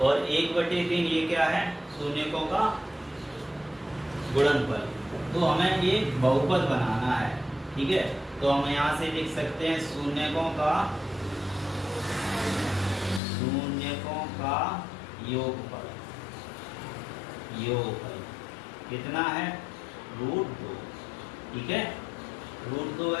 और 1/3 ये क्या है, शून्यकों का गुणनफल। तो हमें ये बहुपद बनाना है, ठीक है। तो हम यहाँ से लिख सकते हैं शून्यकों का योगफल कितना है, √2, ठीक है। √2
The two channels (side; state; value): right; drops out; at 13.2 s